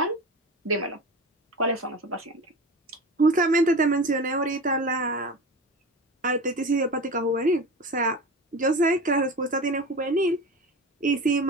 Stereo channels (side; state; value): both; normal; correlation 0.30